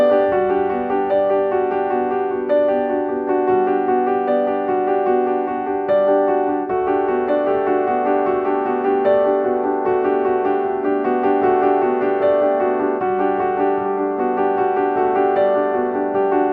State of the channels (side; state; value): both; identical; correlation 1.00